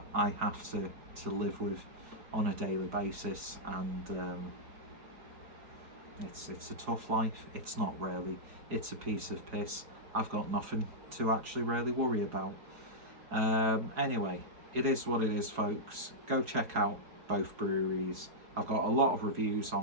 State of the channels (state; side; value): late; left; 4.7 ms